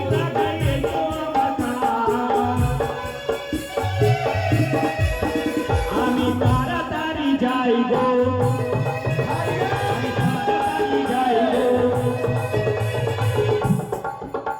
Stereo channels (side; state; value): both; identical; correlation 1.00